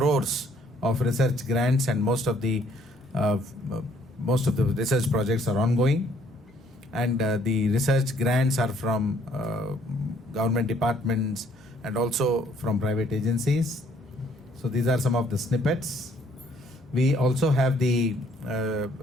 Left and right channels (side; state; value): both; normal; correlation 0.63